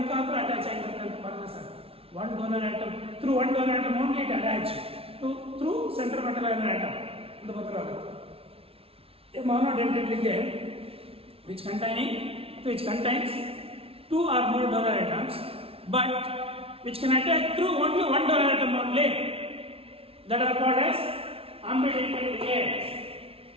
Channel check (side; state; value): left; late; 0.27 ms